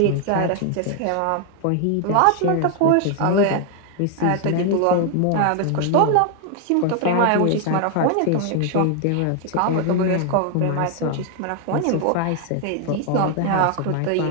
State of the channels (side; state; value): both; different; correlation 0.00